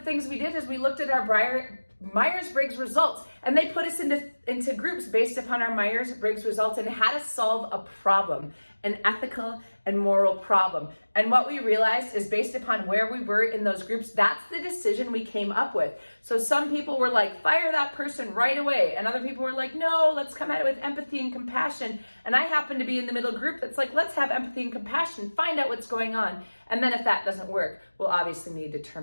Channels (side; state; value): both; inverted; correlation -1.00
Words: we did is we looked at our Myers-Briggs results, and they put us into groups based upon our Myers-Briggs results and had us solve a problem, an ethical and moral problem. And what we realized is, based upon where we were in those groups, that's the decision we came up with. So some people were like, fire that person right away. And other people were like, no, let's come at it with empathy and compassion. And I happen to be in the middle group that's like, let's have empathy and compassion, find out what's going on. And then if that doesn't work, we'll obviously need to